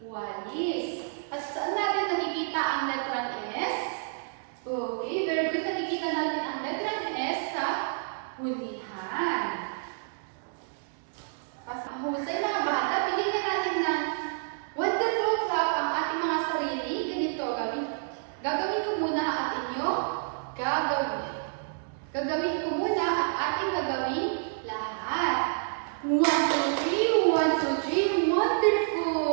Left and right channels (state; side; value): silent; left; digital silence